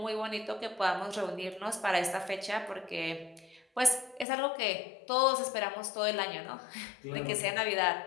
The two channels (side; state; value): right; drops out; at 4.2 s